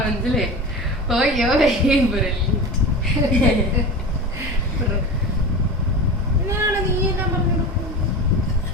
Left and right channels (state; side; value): normal; both; correlation 0.29